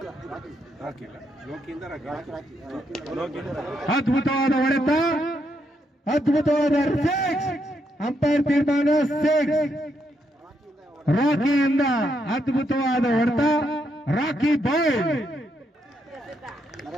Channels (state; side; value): normal; both; correlation 0.78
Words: ಅದ್ಭುತವಾದ ಹೊಡೆತ, ಅದ್ಭುತವಾದ ಸಿಕ್ಸ್. ಅಂಪೈರ್ ತೀರ್ಮಾನ 6. ರಾಕಿಯಿಂದ ಅದ್ಭುತವಾದ ಹೊಡೆತ. ರಾಕಿ ಬಾಯ್.